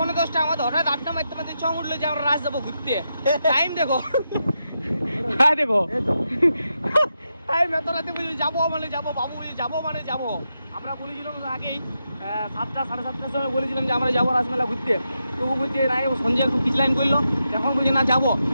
আমাদের হঠাৎ আড্ডা মারতে মারতে চং উঠলো যে আমরা রাজ যাবো ঘুরতে। টাইম দেখো, হ্যাঁ দেখো টাইম এত রাতে বুঝি যাবো মানে যাবো, বাবু বুঝি যাবো মানে যাবো। আমরা বলেছিলাম আগেই 7টা 7:30টার সময় বলেছিলাম যে আমরা যাবো রাসমেলা ঘুরতে। তবু বলছে না, সঞ্জয় একটু পিছলাইন করলো, এখন বলছে না যাবো,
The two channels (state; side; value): inverted; both; correlation -0.86